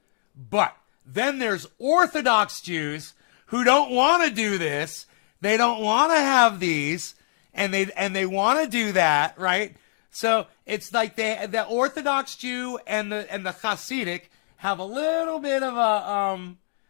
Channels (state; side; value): silent; right; digital silence